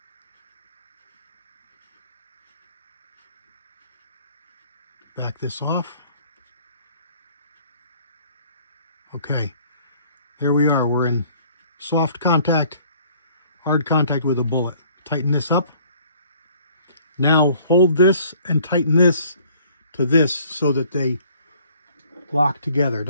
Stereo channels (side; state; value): both; inverted; correlation -0.57